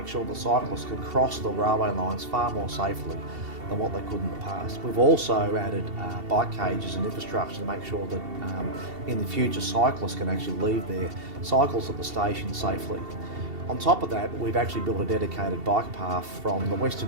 sure that cyclists can cross the railway lines far more safely than what they could in the past. We've also added bike cages and infrastructure to make sure that in the future cyclists can actually leave their cycles at the station safely. On top of that, we've actually built a dedicated bike path from the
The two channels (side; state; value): left; late; 2.7 ms